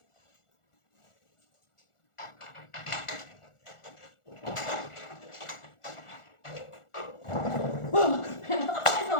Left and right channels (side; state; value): right; late; 1.4 ms